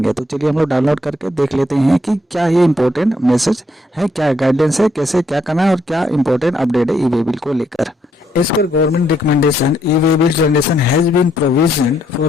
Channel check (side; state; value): both; normal; correlation 0.73